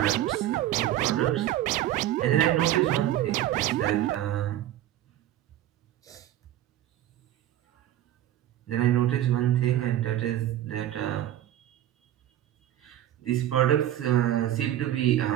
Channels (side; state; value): left; quieter; 12.8 dB